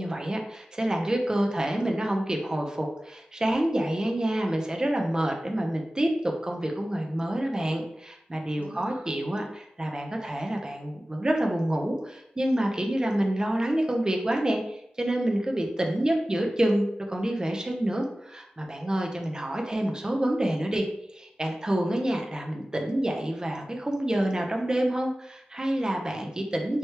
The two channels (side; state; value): both; normal; correlation 0.96